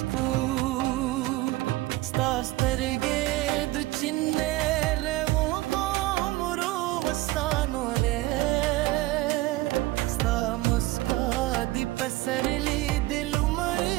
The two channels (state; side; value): quieter; left; 18.6 dB